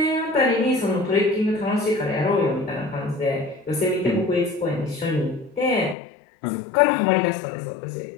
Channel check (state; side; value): drops out; right; at 6.0 s